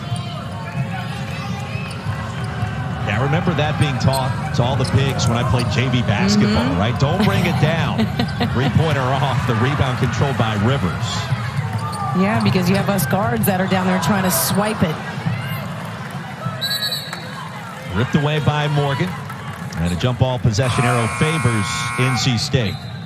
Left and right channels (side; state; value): both; identical; correlation 1.00